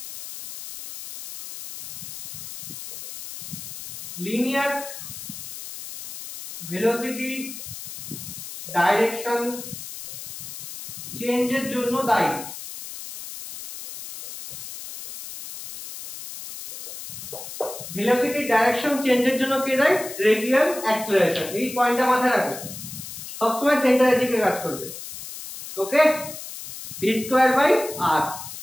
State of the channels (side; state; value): left; noise; hiss, 11 dB below the sound